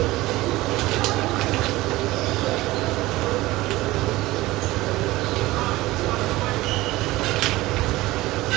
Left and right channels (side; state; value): left; quieter; 18.6 dB